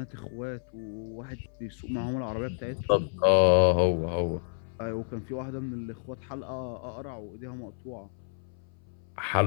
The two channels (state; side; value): silent; right; 58 dB below the other